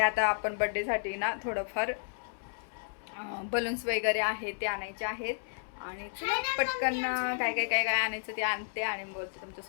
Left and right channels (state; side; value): silent; right; 56 dB below the other